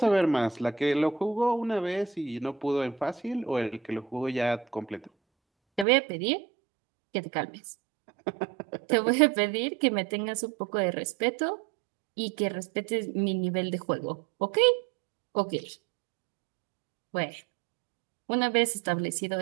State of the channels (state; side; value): drops out; left; at 5.9 s